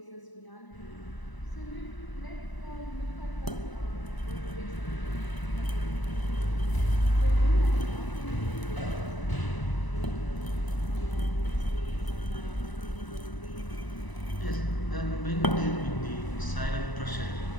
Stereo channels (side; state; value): right; late; 1.0 ms